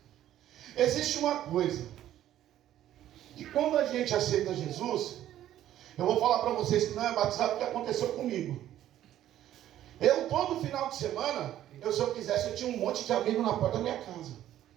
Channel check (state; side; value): quieter; left; 12.4 dB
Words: Existe uma coisa, que quando a gente aceita Jesus, eu vou falar para vocês que não é batizado, o que aconteceu comigo. Eu, todo final de semana, se eu quisesse, eu tinha um monte de amigos na porta da minha casa.